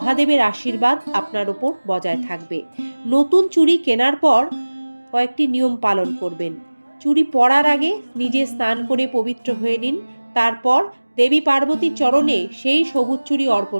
আশীর্বাদ আপনার ওপর বজায় থাকবে। নতুন চুড়ি কেনার পর কয়েকটি নিয়ম পালন করবেন। চুড়ি পরার আগে নিজে স্নান করে পবিত্র হয়ে নিন। তারপর দেবী পার্বতীর চরণে সেই সবুজ চুড়ি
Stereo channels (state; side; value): inverted; both; correlation -1.00